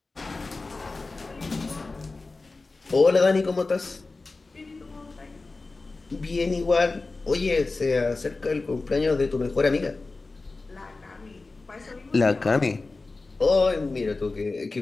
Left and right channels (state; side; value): quieter; right; 3.6 dB